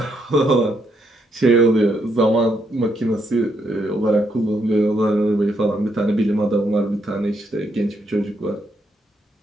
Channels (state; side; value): normal; both; correlation 0.76